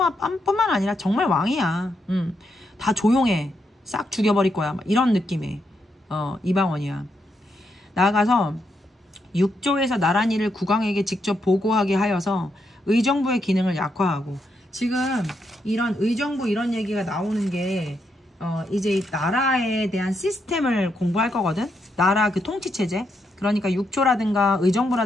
아니라 정말 왕이야. 다 조용해. 싹 죽여버릴 거야. 막 이런 느낌의 이방원이야. 나아가서 육조에서 나란 일을 국왕에게 직접 보고하게 하여서 의정부의 기능을 약화하고, 지금 이런 의정부 이런 얘기가 나오는 게 이제 나라에 대한 시스템을 공부할 거거든. 나라 그 통치체제. 그러니까 육조라든가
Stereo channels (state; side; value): normal; both; correlation 0.80